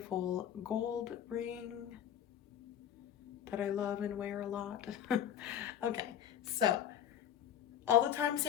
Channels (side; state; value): right; quieter; 9.7 dB